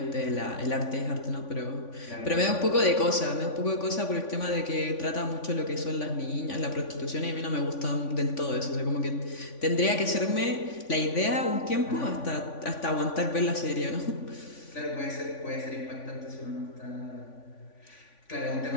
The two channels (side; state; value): right; late; 3.5 ms